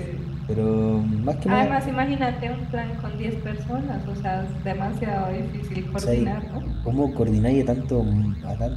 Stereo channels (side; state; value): both; identical; correlation 1.00